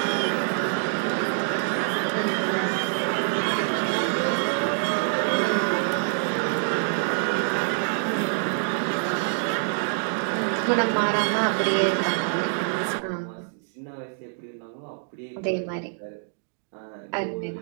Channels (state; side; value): silent; left; digital silence